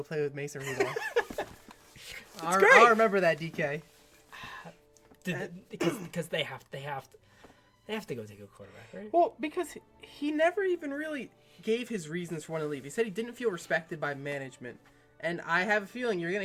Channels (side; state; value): both; identical; correlation 1.00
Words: play with Mason Rudolph. I remember that, DK. Because they have to go take a quarterback, right? Well, because he never even really gave his reasons for wanting to leave. He said he didn't feel respected by management. And I have a feeling you're